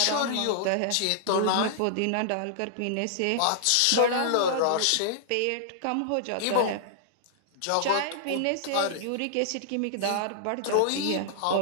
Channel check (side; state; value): both; different; correlation -0.01